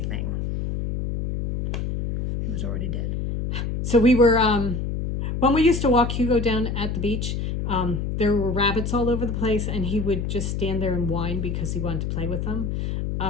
He was already dead. So we were, when we used to walk Hugo down at the beach, there were rabbits all over the place, and he would just stand there and whine because he wanted to play with them.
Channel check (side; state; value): left; noise; hum, 2 dB below the sound